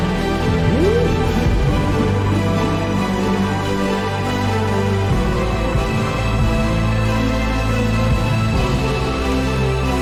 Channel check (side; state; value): both; identical; correlation 1.00